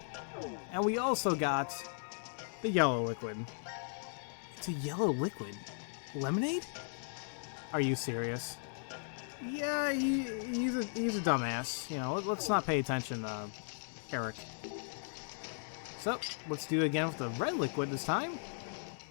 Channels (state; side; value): silent; right; 53 dB below the other